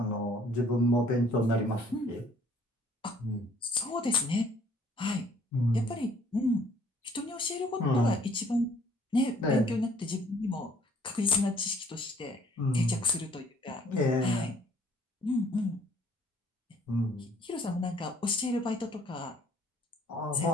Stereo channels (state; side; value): normal; both; correlation 0.60